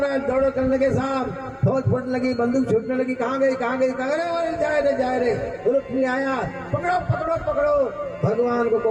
दौड़ो करने के साथ फौज फूटने लगी, बंदूक छूटने लगी। कहाँ गई कहाँ गई, कहाँ गए? जाए रे। रुक्मिणी आया, पकड़ो पकड़ो पकड़ो। भगवान को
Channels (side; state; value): both; identical; correlation 1.00